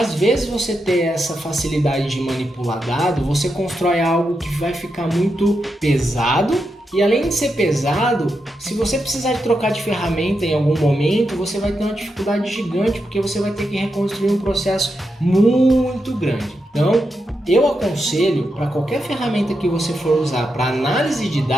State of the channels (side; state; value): both; normal; correlation 0.86